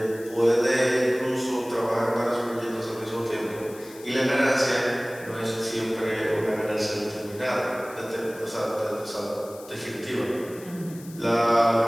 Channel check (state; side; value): noise; left; hiss, 20 dB below the sound